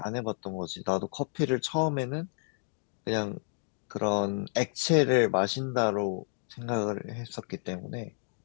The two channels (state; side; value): silent; right; digital silence